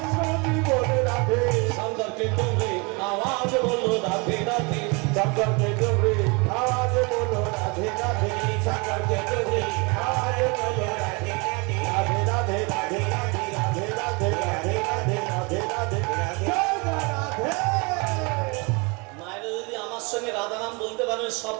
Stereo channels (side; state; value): left; quieter; 29.7 dB